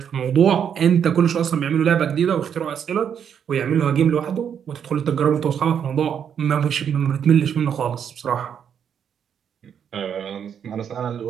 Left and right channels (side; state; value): left; quieter; 8.2 dB